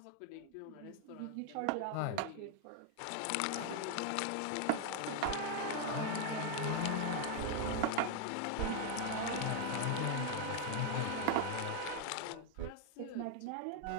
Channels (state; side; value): different; both; correlation 0.01